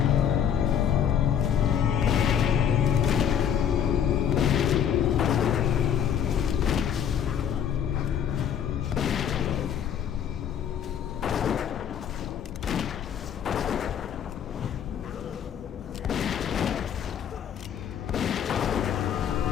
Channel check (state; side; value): quieter; right; 8.8 dB